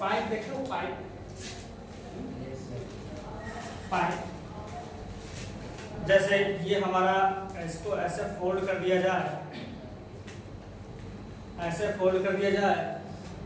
देखो पाइप, पाइप जैसे ये हमारा इसको ऐसे फोल्ड कर दिया जाए, ऐसे फोल्ड कर दिया जाए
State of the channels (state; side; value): identical; both; correlation 1.00